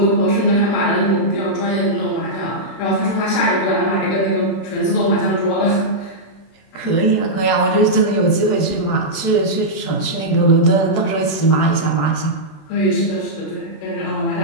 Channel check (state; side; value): late; right; 26 ms